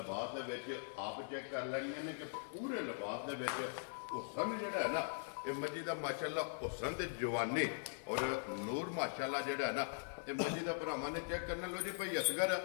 ਦੇ ਵਿੱਚ ਆਪ ਚੈੱਕ ਕਰ ਲੈਣੀਆਂ ਨੇ ਕਿ ਪੂਰੇ ਲਿਬਾਸ ਦੇ ਵਿੱਚ ਹੁਸਨ ਜਿਹੜਾ ਹੈ ਨਾ ਇਹ ਮੱਝੀ ਦਾ ਮਾਸ਼ਾਅੱਲਾ ਹੁਸਨ ਤੇ ਜਵਾਨੀ ਔਰ ਨੂਰ ਮਾਸ਼ਾਅੱਲਾ ਜਿਹੜਾ ਹੈ ਨਾ ਇਹ ਮੱਝੀ ਦਾ ਭਰਾਵਾਂ ਨੇ ਚੈੱਕ ਕਰਨਾ। ਲੋ ਜੀ ਭਾਈ ਅਸਗਰ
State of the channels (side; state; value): right; silent; 50 dB below the other